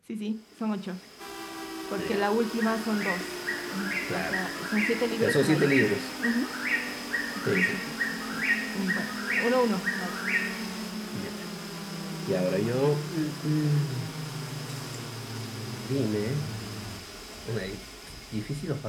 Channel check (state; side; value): identical; both; correlation 1.00